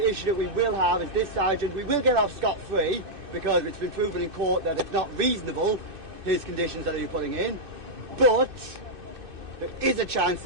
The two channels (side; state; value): left; late; 2.6 ms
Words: that we will have is this sergeant. We will get off scot-free because it's been proven in court that it's not reasonable, his conditions that you're putting in, but there is a chance